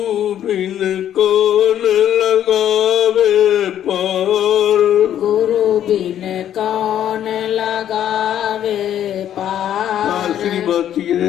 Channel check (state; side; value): quieter; right; 10.7 dB